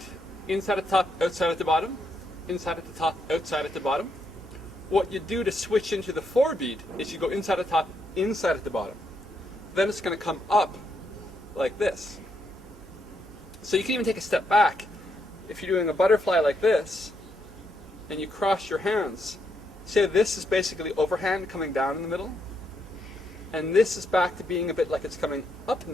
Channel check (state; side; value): normal; both; correlation 0.78